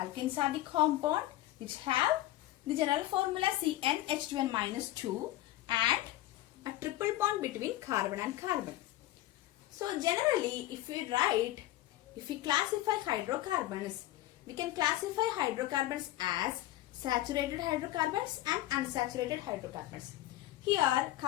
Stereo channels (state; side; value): quieter; right; 15.6 dB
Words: are the compound which have the general formula CnH2n-2 and a triple bond between carbon and carbon. So generally, if we classify hydrocarbons, we can classify hydrocarbons as saturated hydrocarbons and unsaturated hydrocarbons. Here,